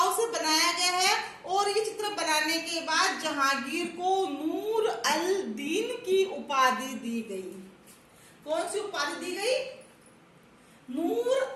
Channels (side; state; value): both; identical; correlation 1.00